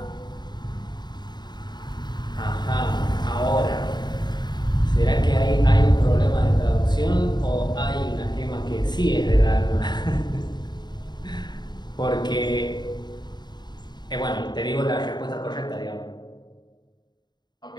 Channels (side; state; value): right; late; 0.21 ms